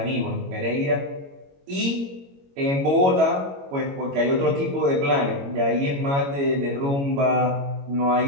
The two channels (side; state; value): left; late; 22 ms